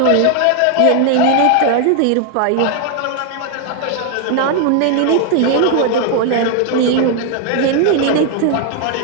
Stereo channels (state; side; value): different; both; correlation 0.00